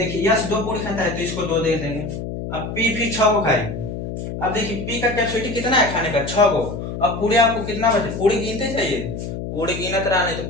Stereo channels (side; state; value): left; noise; hum, 6 dB below the sound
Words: यस 2 पूरी खाता है तो इसको 2 दे देंगे। अब पी फिर 6 गो खाई, अब देखिए पी का कैपेसिटी कितना है खाने का 6 गो, अब पूरी आपको कितना बचे पूरी गिनते चाहिए, पूरी गिनत रहा नहीं तो